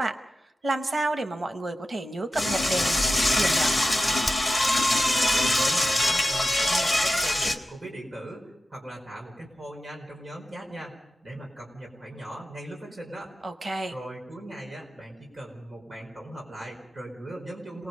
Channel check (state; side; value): normal; both; correlation 0.92